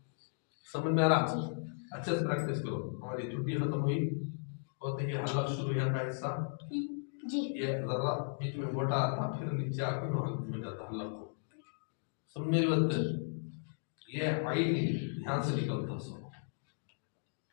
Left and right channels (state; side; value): silent; right; digital silence